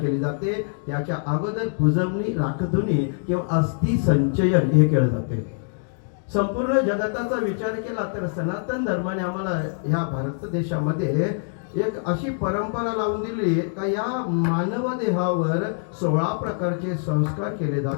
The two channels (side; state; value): right; silent; 62 dB below the other